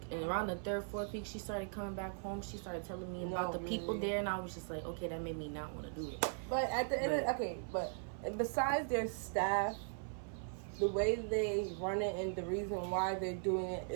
and around the 3rd, 4th week, she started coming back home. She started telling me about the people there, and I was just like, okay, that made me not want to do it. But at the end, but besides their staff, the way they run it and the reason why they're doing it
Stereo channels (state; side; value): silent; left; 52 dB below the other